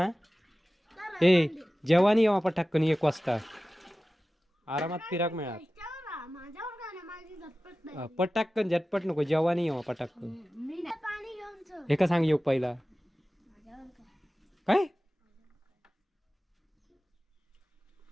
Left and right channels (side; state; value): both; normal; correlation 0.95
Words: ए जेवानी येवा पटाक्कन 1 वाजता आरामात फिराक मिळात. पटाक्कन झटपट नको जेवानी येवा पटाक्कन. एका सांग येऊ पहिला काय